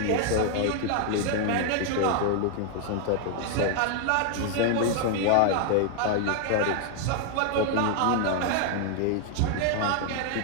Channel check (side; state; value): both; different; correlation 0.00